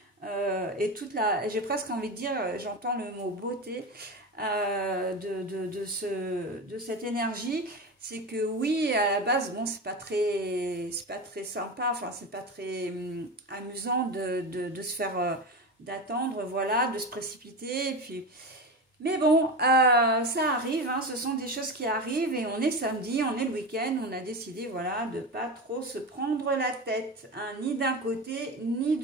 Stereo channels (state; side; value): normal; both; correlation 0.23